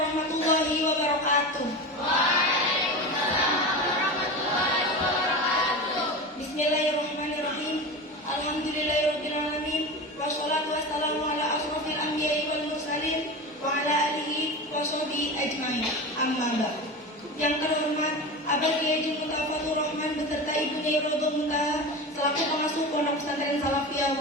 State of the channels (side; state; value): both; normal; correlation 0.27